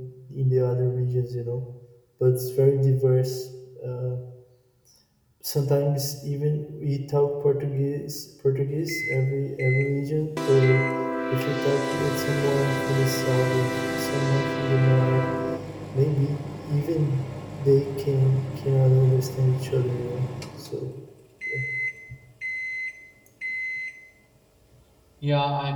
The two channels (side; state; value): both; identical; correlation 1.00